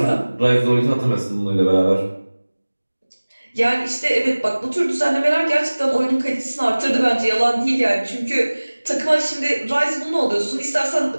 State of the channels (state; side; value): inverted; both; correlation -1.00